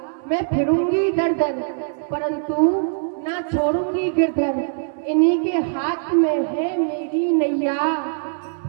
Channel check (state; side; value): silent; left; 58 dB below the other